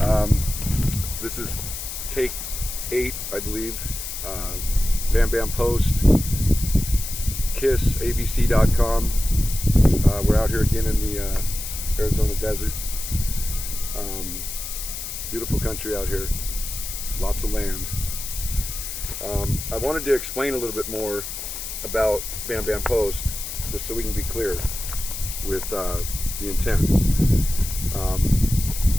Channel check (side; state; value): left; noise; hiss, 7 dB below the sound